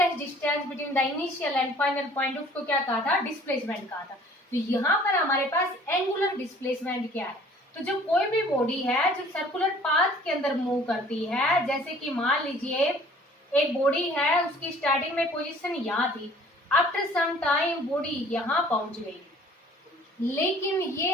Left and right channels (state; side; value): normal; both; correlation 0.52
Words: distance between the initial and final point, उसको क्या कहा था, डिस्प्लेसमेंट कहा था। तो यहाँ पर हमारे पास एंगुलर डिस्प्लेसमेंट क्या है, तो जब कोई भी बॉडी है जो सर्कुलर पाथ के अंदर मूव करती है, जैसे कि मान लीजिए एक बॉडी है, उसकी स्टार्टिंग में पोजीशन यहाँ थी, आफ्टर सम टाइम बॉडी यहाँ पहुंच गई, लेकिन